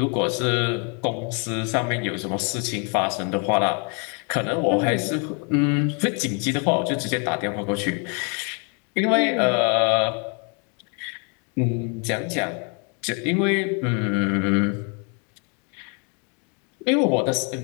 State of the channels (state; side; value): quieter; right; 36.4 dB